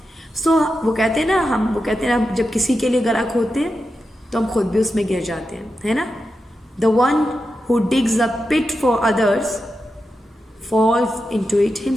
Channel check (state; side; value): normal; both; correlation 0.89